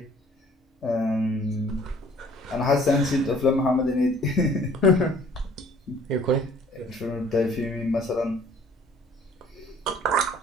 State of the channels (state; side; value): normal; both; correlation 0.55